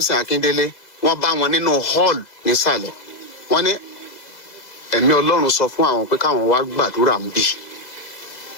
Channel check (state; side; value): late; right; 2.0 ms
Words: Akindele wọ́n bá wọn nínú hall nísàlẹ̀ wọ́n ní ẹ̀mí Ọlọ́run sọ fún àwọn pé káwọn wá gbàdúrà ń bì